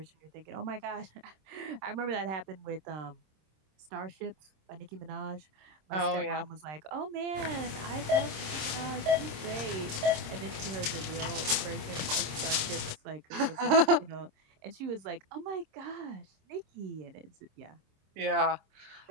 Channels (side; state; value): left; late; 26 ms